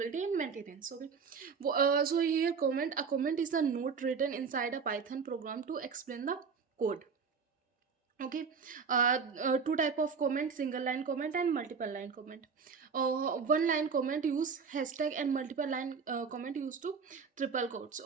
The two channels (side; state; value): left; quieter; 5.7 dB